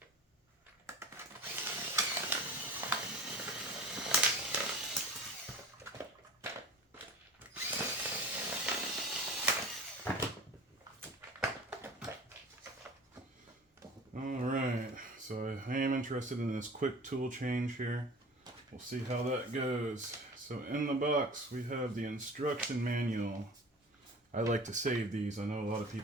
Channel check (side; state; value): both; normal; correlation 0.39